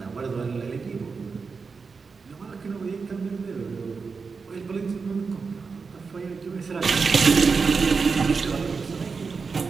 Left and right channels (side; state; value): left; quieter; 4.9 dB